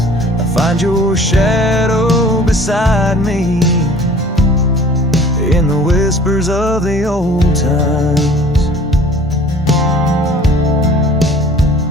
I find your shadow beside me in the whispers of the old times.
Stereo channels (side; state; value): both; normal; correlation 0.50